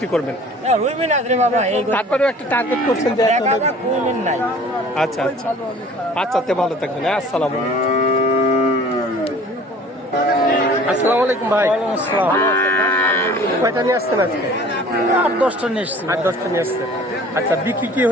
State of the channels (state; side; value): normal; both; correlation 0.48